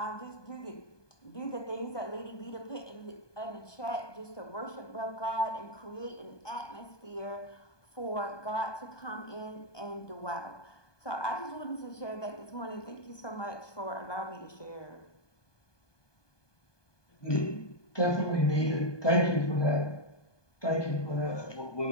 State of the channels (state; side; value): late; right; 1.2 ms